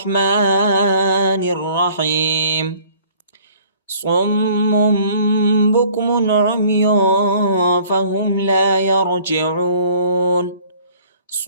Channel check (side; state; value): both; inverted; correlation -0.54